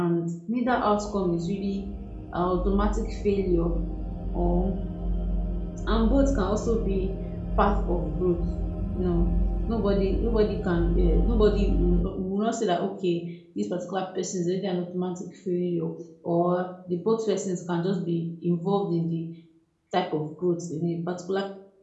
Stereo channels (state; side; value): identical; both; correlation 1.00